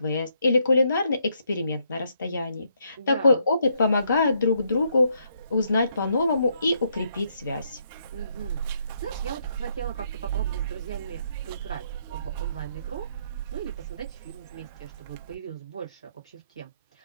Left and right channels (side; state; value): both; inverted; correlation -0.74